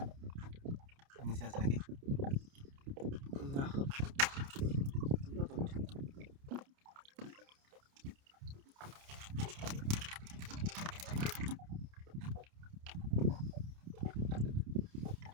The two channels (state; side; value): late; left; 29 ms